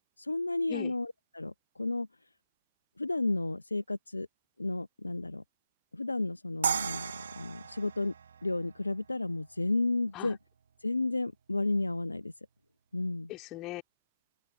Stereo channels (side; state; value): both; inverted; correlation -0.94